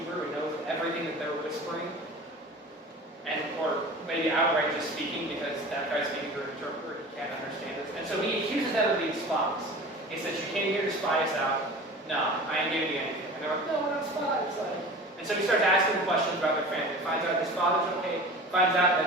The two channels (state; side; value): normal; both; correlation 0.38